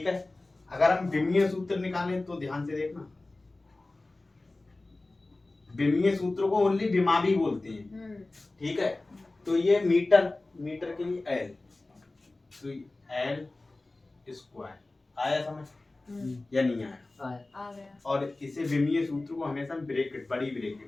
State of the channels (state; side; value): quieter; right; 3.0 dB